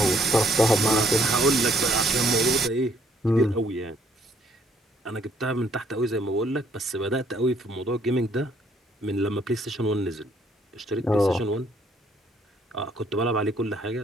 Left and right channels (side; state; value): both; normal; correlation 0.67